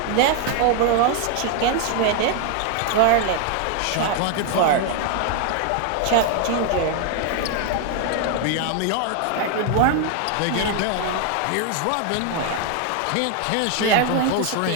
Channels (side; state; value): both; different; correlation 0.01